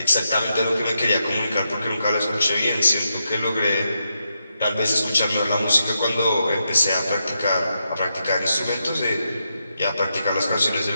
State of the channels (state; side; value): inverted; both; correlation -0.84